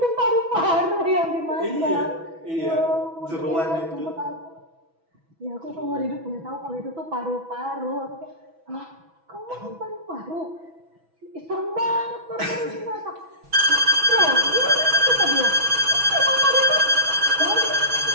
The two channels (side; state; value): left; late; 6.1 ms